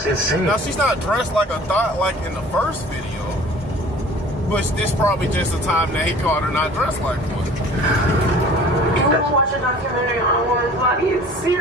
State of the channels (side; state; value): both; normal; correlation 0.47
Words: insane. Now, she's not dressed like a thought like in the first video, but this probably just the time that he caught her not dressed like one. You want to watch a documentary on a woman's body? It's